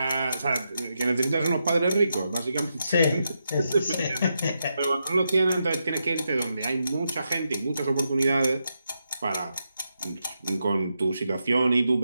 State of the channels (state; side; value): inverted; both; correlation -0.85